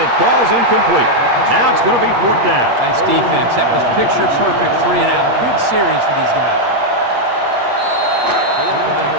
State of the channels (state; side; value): late; left; 8.4 ms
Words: falls incomplete. Now it's going to be 4th down. Nice defense. That was picture perfect 3 and out. Good series for these guys.